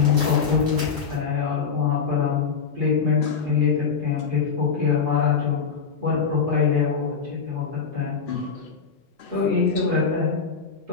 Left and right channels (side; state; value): right; quieter; 5.9 dB